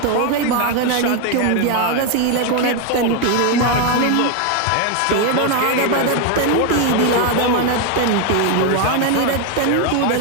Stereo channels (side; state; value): both; different; correlation 0.01